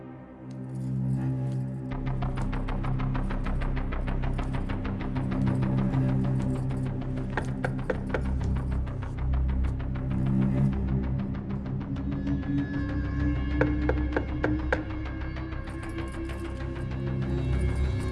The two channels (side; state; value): both; identical; correlation 1.00